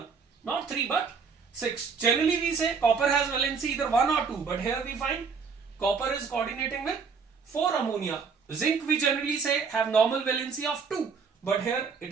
Not 3 but 6. Generally we say copper has valency either 1 or 2, but here we find copper is coordinating with 4 ammonia. Zinc we generally say have normal valency of 2, but here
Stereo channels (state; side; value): quieter; left; 5.5 dB